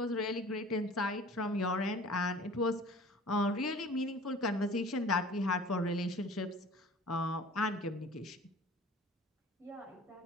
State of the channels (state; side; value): normal; both; correlation 0.45